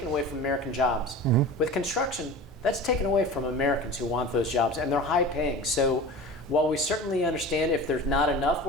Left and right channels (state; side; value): normal; both; correlation 0.35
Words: away from American jobs. With construction, that's taken away from Americans who want those jobs, and they're high paying. So while we certainly understand if there's not enough